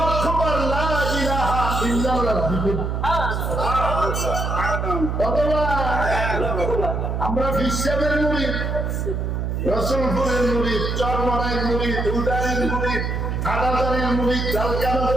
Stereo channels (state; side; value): noise; right; hum, 1 dB below the sound